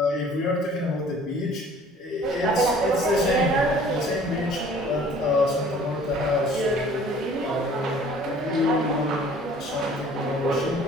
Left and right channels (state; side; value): normal; both; correlation 0.52